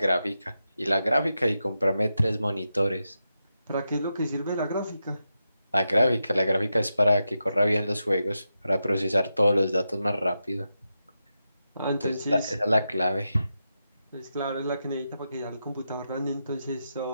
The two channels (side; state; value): both; inverted; correlation -0.88